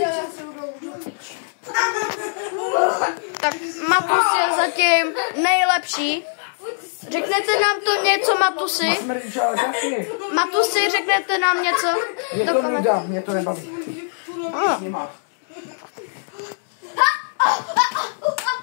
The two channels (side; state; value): right; silent; digital silence